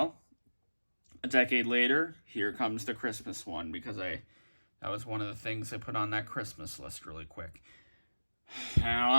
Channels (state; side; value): inverted; both; correlation -1.00